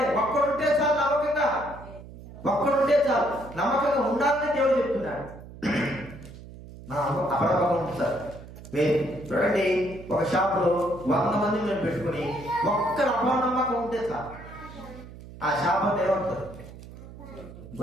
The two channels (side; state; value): right; noise; hum, 16 dB below the sound